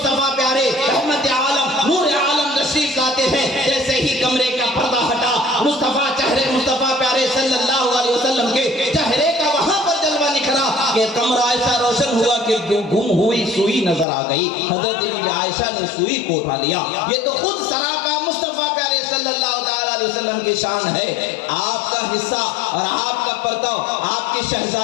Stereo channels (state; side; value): drops out; right; at 14.1 s